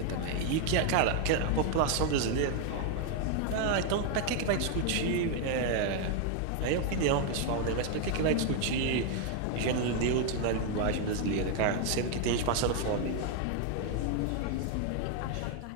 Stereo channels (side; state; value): both; different; correlation 0.00